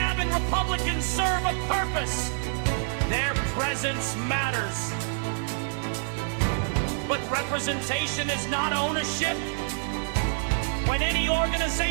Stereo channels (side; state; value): left; silent; digital silence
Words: Republicans serve a purpose. Their presence matters. But representation is not ownership. When any